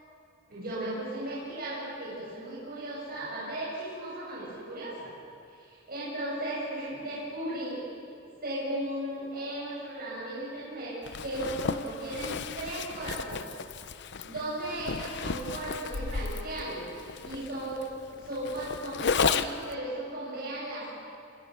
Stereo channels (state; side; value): normal; both; correlation 0.00